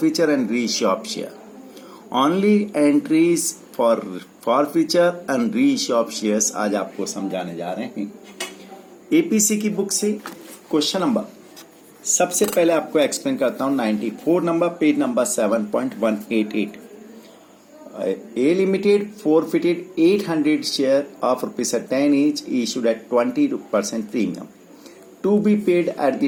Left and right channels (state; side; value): identical; both; correlation 1.00